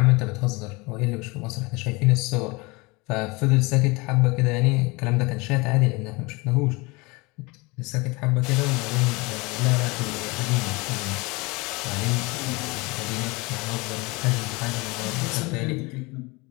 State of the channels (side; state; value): right; quieter; 25.7 dB